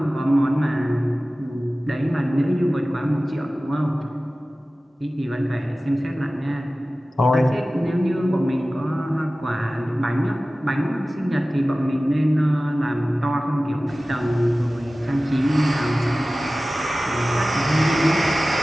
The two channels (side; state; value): both; normal; correlation 0.97